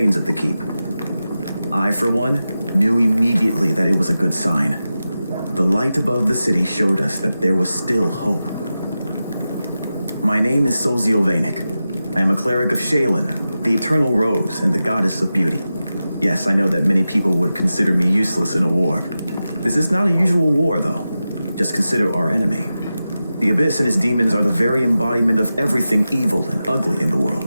of the keep. I, for one, knew immediately that it was a good sign. The light above the city showed us that there was still hope. My name is Sozio Vanek. I am a cleric of Shaylin, the Eternal Rose and the Goddess of Beauty. Yes, I know that many people would consider me useless in a war. This is not a usual war, though. Just consider our enemy. The Abyss and his demons are the very embodiment of everything evil and ugly in the world.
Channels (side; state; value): both; inverted; correlation -0.93